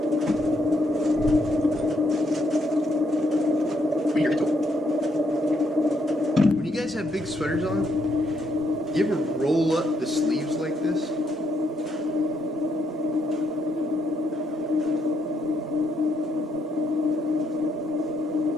Weed eater head tool. When you guys have big sweaters on, you ever roll up the sleeves like this?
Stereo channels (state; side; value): normal; both; correlation 0.75